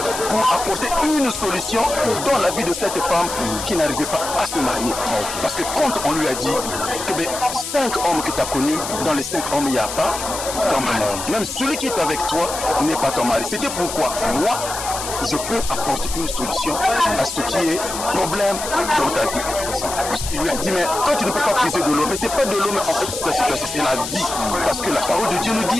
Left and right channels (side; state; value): left; noise; hiss, 7 dB below the sound